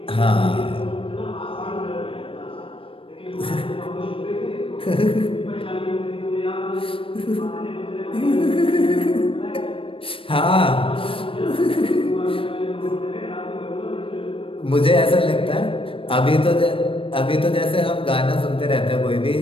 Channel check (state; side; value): late; right; 0.26 ms